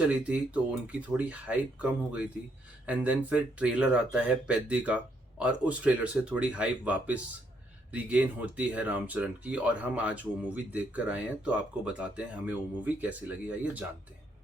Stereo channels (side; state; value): both; normal; correlation 0.73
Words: थी तो उनकी थोड़ी हाइप कम हो गई थी एंड देन फिर ट्रेलर आता है पेद्दी का और उस ट्रेलर से थोड़ी हाइप वापस रिगेन होती है रामचरण की और हम आज वो मूवी देख कर आए हैं तो आपको बताते हैं हमें वो मूवी कैसी लगी, आइए जानते हैं।